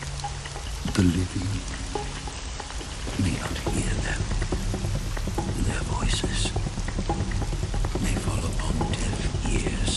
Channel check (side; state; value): both; identical; correlation 1.00